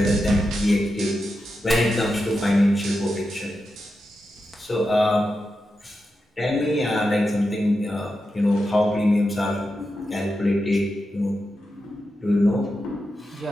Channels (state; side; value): normal; both; correlation 0.89